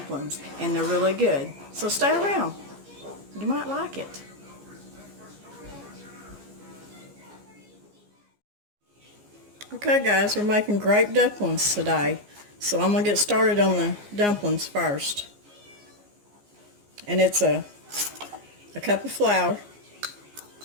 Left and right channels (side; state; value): left; late; 14 ms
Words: and they're really good. So stay around. You might like it. Okay guys, we're making grape dumplings today. So I'm going to get started on the dumplings first. And it's a cup of flour,